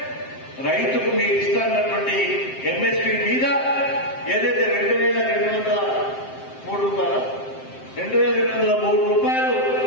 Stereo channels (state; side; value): late; right; 7.6 ms